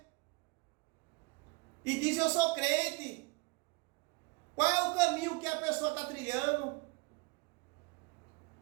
E diz, eu sou crente. Qual é o caminho que a pessoa está trilhando?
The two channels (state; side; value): quieter; left; 28.0 dB